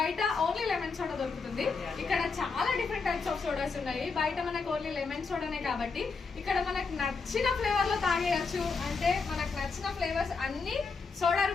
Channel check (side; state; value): right; quieter; 4.7 dB